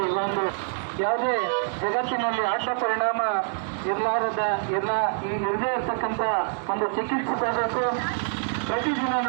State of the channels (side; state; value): left; silent; 61 dB below the other